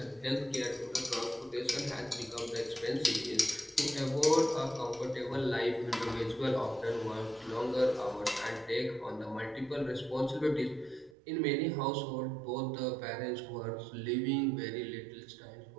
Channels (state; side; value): drops out; left; at 11.2 s